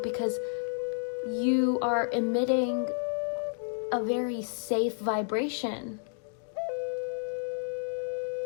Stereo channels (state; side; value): silent; right; digital silence